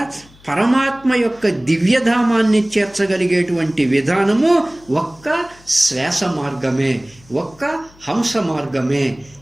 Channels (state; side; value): noise; left; hum, 27 dB below the sound